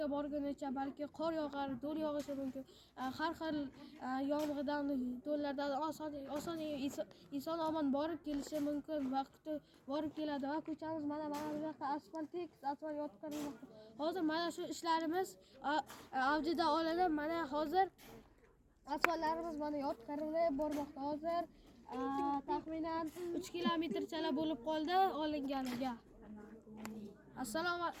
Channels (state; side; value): identical; both; correlation 1.00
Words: borgunicha, balki qor yog'ar, do'l yog'ishi mumkin. Har xil yomg'irdan, do'llardan oson inson omon borib kelishi mumkin. Vaqti borib keladi va ko'chamiz mana bu yoqqa asfalt yotqizilmoqda. Hozir mana shu ishlarimiz avjida olinib, mana hozir asfaltlarimiz mana yotqizilib bormoqda. Hozir taxminan 3 kilometrchalar bo'lib qoldi olinganiga. Assalomu